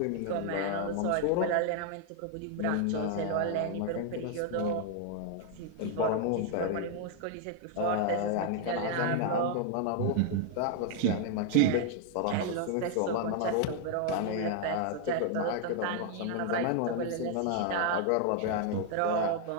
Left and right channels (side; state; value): both; different; correlation 0.00